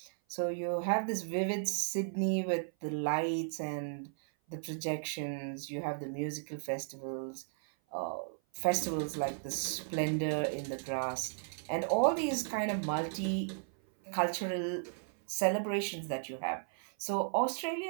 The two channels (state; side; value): silent; left; 54 dB below the other